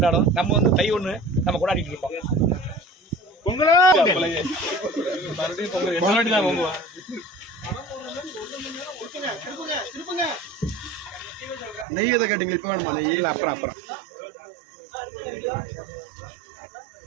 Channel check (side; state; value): left; drops out; at 11.9 s